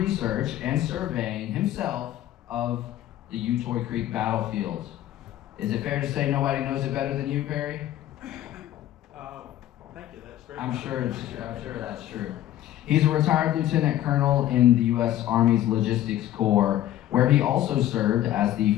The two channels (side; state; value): right; quieter; 13.0 dB